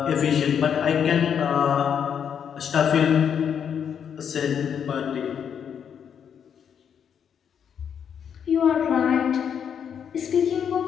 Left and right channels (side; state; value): right; quieter; 7.9 dB